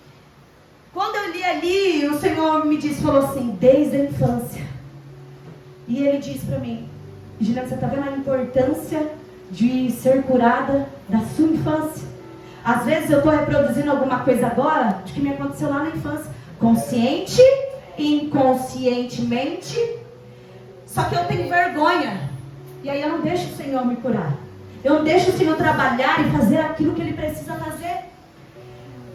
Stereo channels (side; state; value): both; identical; correlation 1.00